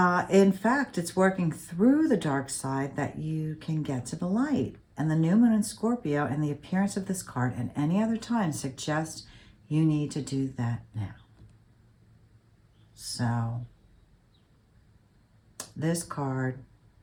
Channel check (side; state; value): both; identical; correlation 1.00